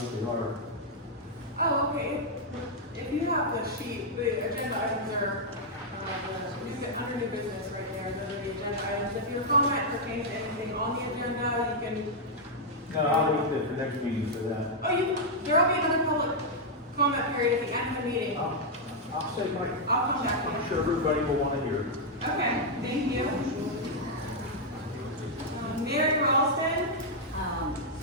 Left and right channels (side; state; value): both; normal; correlation -0.04